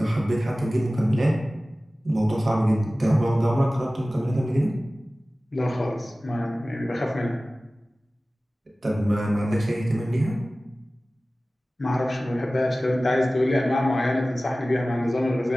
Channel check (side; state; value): both; normal; correlation 0.97